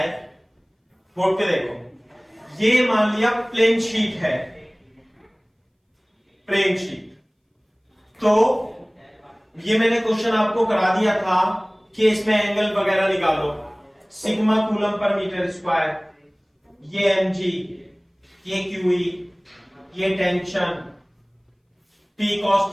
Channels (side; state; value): both; identical; correlation 1.00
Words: बोर्ड पे देखो। ये मान लिया प्लेन शीट है, प्लेन शीट। तो ये मैंने क्वेश्चन आपको करा दिया था कि इसमें एंगल वगैरह निकालो, sigma coulomb per metre square, ये mg, ये QE, ये tension, P cos